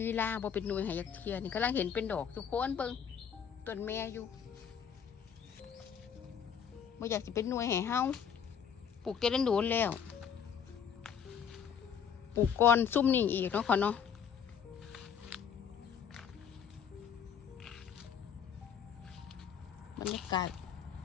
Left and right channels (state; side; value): quieter; right; 7.7 dB